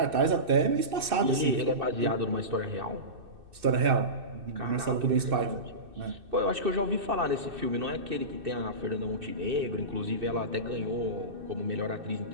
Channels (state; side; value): late; left; 2.6 ms